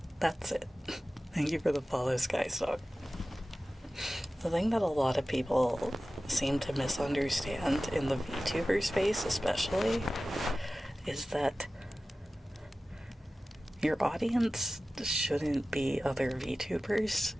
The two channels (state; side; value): normal; both; correlation 0.96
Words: That's it. Thank you for the follow, Skystock. The thing that a lot of people seem to misunderstand in the VTuber space especially is that your audience shouldn't be other VTubers.